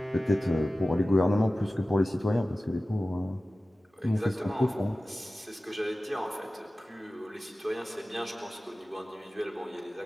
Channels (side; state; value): both; normal; correlation 0.96